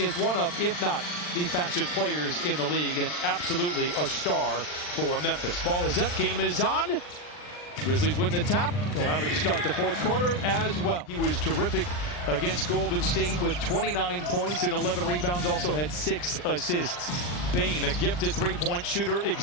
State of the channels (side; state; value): right; late; 40 ms